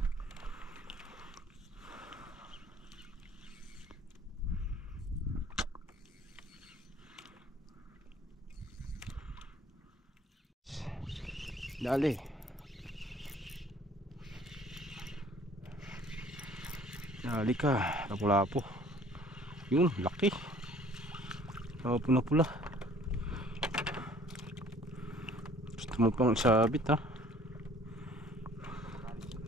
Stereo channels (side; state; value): both; normal; correlation 0.54